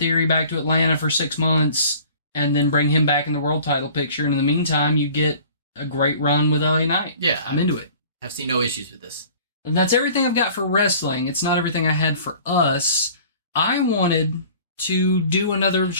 back to Atlanta for 6 months, and then bring him back in the world title picture. And in the meantime, you get a great run with LA Knight. Yeah. I'm into it. I've seen no issues with this. And that's everything I've got for wrestling. It's not everything I had for us. I wanted to do another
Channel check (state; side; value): inverted; both; correlation -0.48